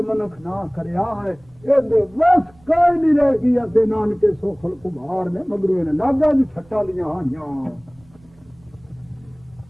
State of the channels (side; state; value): right; noise; rumble, 29 dB below the sound